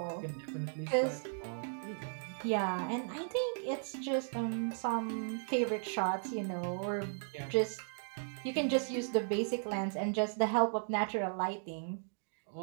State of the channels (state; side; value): silent; left; digital silence